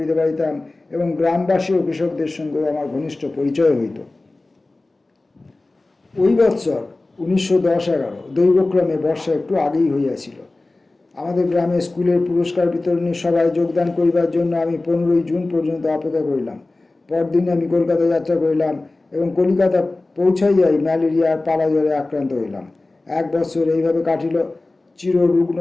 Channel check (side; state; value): right; quieter; 3.1 dB